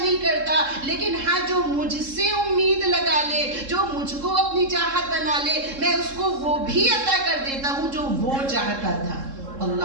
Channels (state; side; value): late; left; 3.7 ms